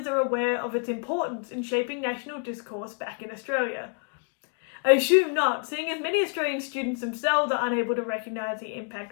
are aware of its importance in shaping national discourse back in Australia. I assume not, seeing as many Australian students themselves are unable to recognise the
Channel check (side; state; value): right; quieter; 39.1 dB